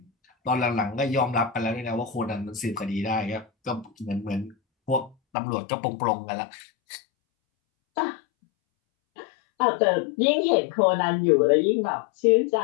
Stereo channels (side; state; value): right; drops out; at 5.2 s